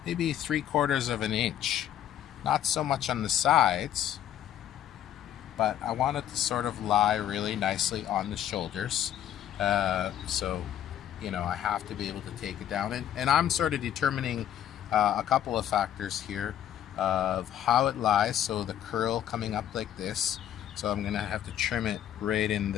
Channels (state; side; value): quieter; right; 10.9 dB